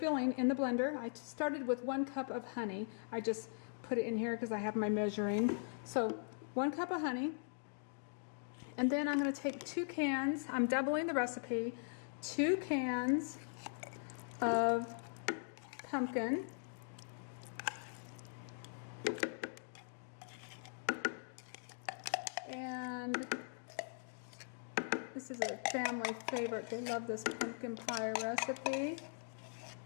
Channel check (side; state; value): right; silent; digital silence